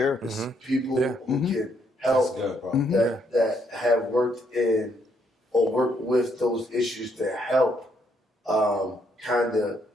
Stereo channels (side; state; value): both; normal; correlation 0.73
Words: People who can That's help good, bro. that have worked in or work with those issues to help kind of